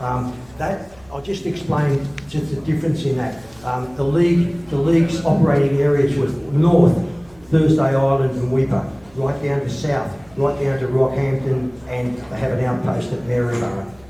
I'll just explain just the difference in that. The league's operating areas were north, Thursday Island and Weipa, right down to south, right down to Rockhampton, and they have an outpost at Maryborough.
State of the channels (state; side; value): noise; right; hum, 27 dB below the sound